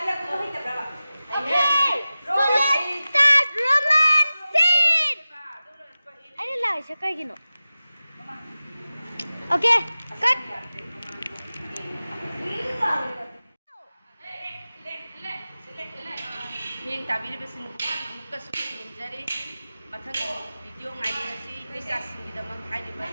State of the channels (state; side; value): inverted; both; correlation -0.95